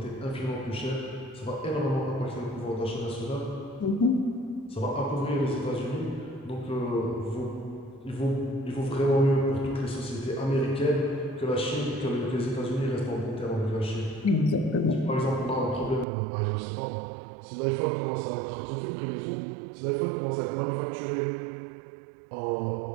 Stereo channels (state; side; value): drops out; left; at 16.1 s